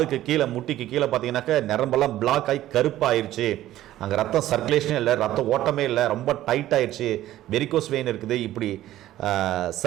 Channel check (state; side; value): quieter; left; 14.0 dB